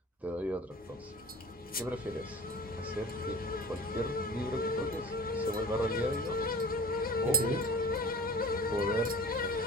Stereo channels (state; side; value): normal; both; correlation 0.41